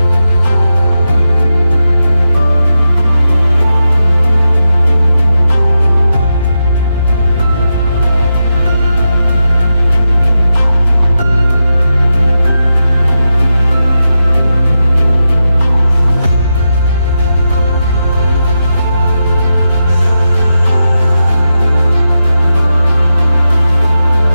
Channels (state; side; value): inverted; both; correlation -0.88